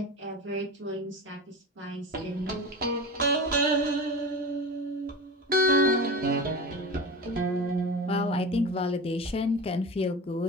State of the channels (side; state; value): both; normal; correlation 0.29